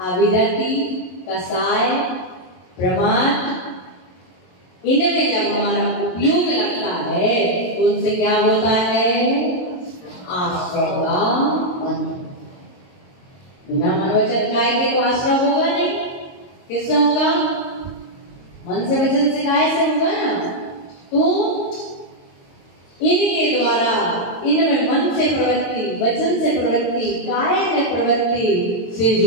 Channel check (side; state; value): right; late; 22 ms